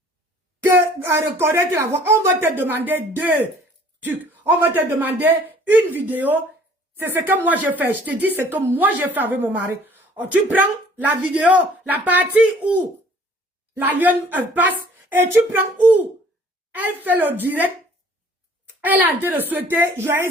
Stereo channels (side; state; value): both; normal; correlation 0.54